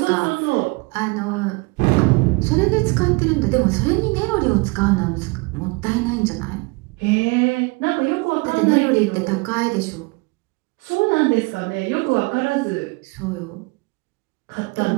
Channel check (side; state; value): left; quieter; 27.2 dB